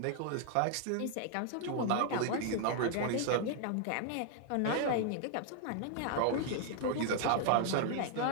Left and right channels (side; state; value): both; different; correlation 0.00